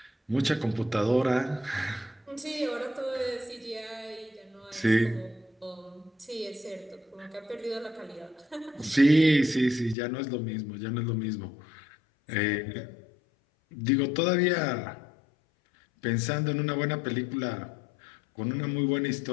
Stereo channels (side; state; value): right; drops out; at 10.0 s